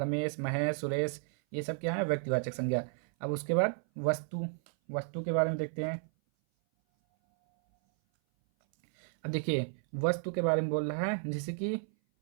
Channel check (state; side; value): silent; left; 56 dB below the other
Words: महेश, सुरेश, ये सब क्या है व्यक्तिवाचक संज्ञा। अब उसके बाद वस्तु के बारे में देखते हैं। अब देखिए वस्तु के बारे में बोल रहा है, जैसे कि